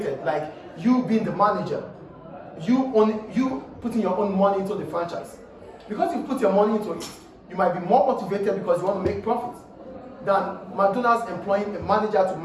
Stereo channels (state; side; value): identical; both; correlation 1.00